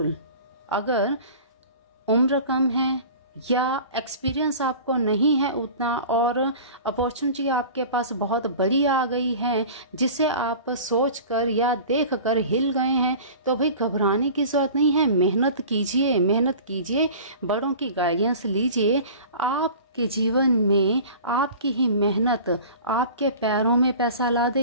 अगर उम्र कम है, या एक्सपीरियंस आपको नहीं है उतना, और अपॉर्चुनिटी आपके पास बहुत बड़ी आ गई है जिसे आप सोचकर या देखकर हिल गए हैं, तो भाई घबराने की जरूरत नहीं है। मेहनत कीजिए, मेहनत कीजिए, बड़ों की गाइडेंस लीजिए। आपके जीवन में आपकी ही मेहनत आपके पैरों में पैसा ला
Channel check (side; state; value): both; inverted; correlation -0.40